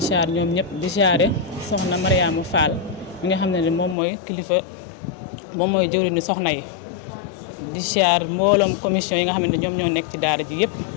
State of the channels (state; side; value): drops out; right; at 4.0 s